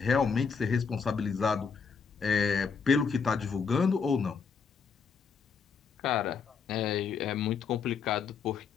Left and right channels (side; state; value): right; quieter; 5.8 dB